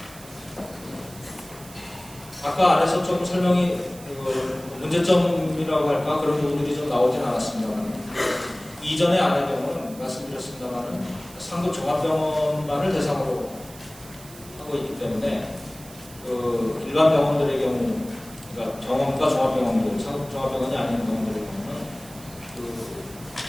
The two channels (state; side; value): noise; right; hiss, 19 dB below the sound